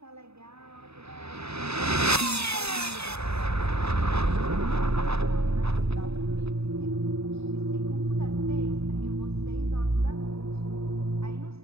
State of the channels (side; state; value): left; late; 0.79 ms